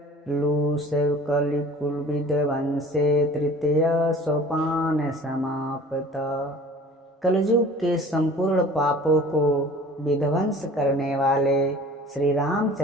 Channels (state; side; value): normal; both; correlation 0.46